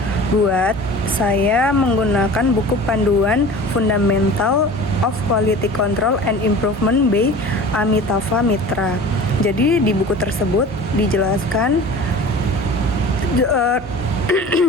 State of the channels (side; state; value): both; normal; correlation 0.39